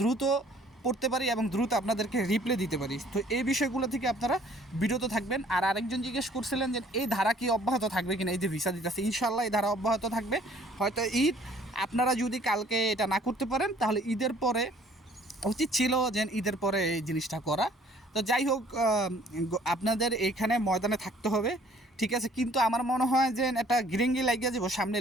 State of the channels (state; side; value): normal; both; correlation 0.57